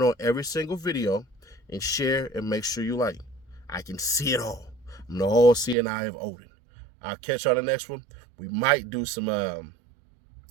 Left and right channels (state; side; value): drops out; left; at 5.8 s